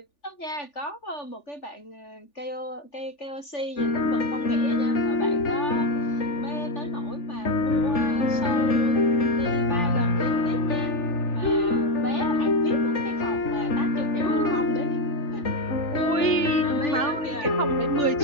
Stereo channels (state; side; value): late; right; 3.4 ms